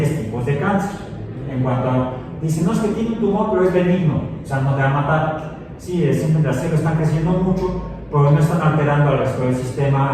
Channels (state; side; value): identical; both; correlation 1.00